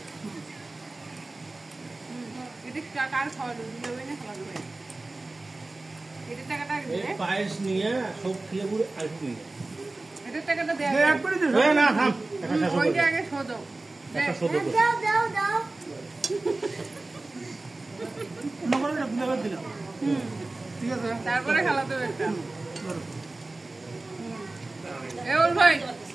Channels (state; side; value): quieter; left; 3.1 dB